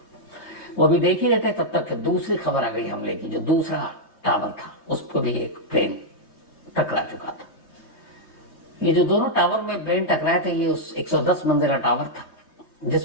वो अभी देख ही रहते तब तक दूसरी खबर आ गई हमले की, जो दूसरा टावर था उसको भी एक प्लेन टकरा चुका था। ये जो दोनों टावर में प्लेन टकराए थे, ये उस 110 मंजिला टावर था,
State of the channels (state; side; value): late; right; 3.2 ms